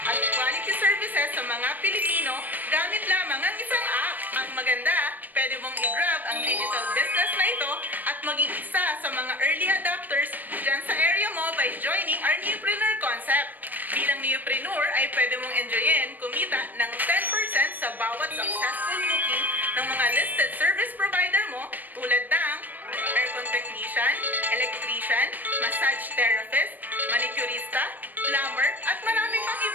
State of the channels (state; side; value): late; left; 0.086 ms